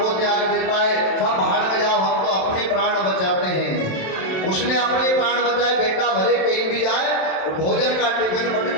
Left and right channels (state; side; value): late; right; 27 ms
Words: त्याग देता है, सब भाड़ में जाओ, हम तो अपने प्राण बचाते हैं। उसने अपने प्राण बचाए, बेटा भले कहीं भी जाए, भोजन का टिफिन